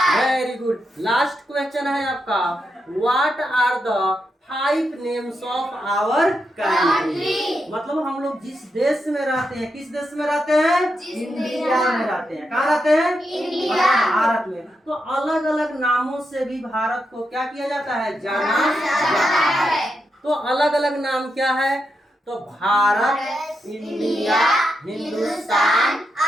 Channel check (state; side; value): normal; both; correlation 0.85